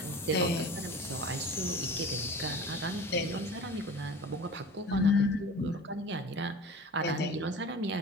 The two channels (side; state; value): both; normal; correlation 0.38